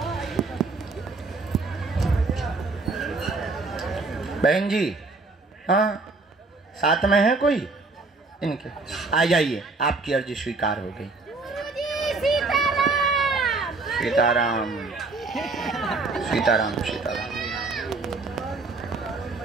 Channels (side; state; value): left; quieter; 3.7 dB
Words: बहन जी, हाँ साथ में है कोई? इनके आ जाइए, आपकी अर्जी स्वीकार हो गई। सीताराम सीताराम सीताराम।